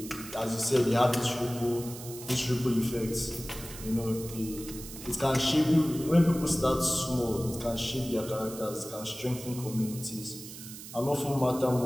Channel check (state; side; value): noise; right; hiss, 13 dB below the sound